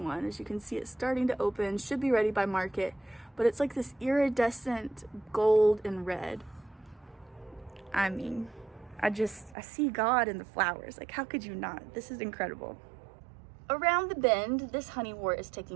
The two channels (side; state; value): left; drops out; at 9.6 s